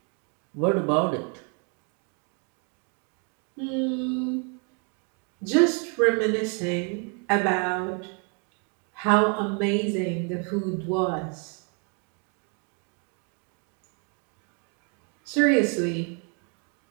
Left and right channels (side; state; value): left; quieter; 37.7 dB